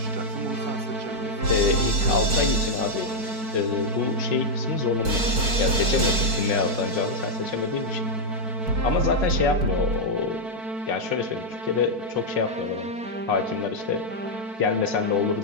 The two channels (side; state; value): left; late; 4.6 ms